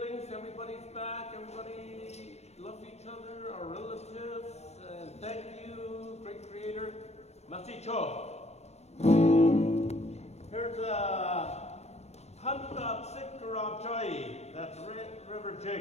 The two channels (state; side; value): late; right; 0.31 ms